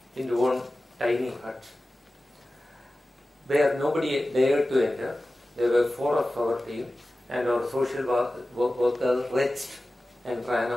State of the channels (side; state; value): both; normal; correlation 0.95